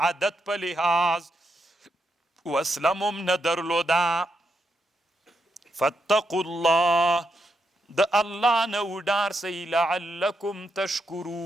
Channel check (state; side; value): normal; both; correlation 0.82